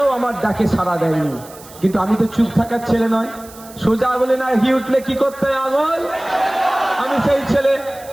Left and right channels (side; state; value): right; noise; hiss, 20 dB below the sound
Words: আমার ডাকে সাড়া দেয়নি। কিন্তু আমি তো চুপ থাকার ছেলে নয়, সোজা আঙুলে না ঘি উঠলে কি করতে হয় আঙুল। আমি সেই ছেলে,